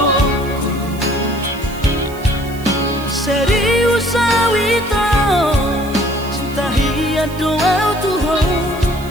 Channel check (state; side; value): noise; right; hiss, 19 dB below the sound